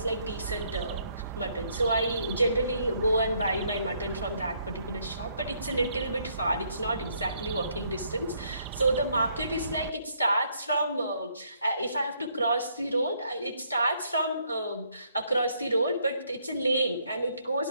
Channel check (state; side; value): inverted; both; correlation -0.70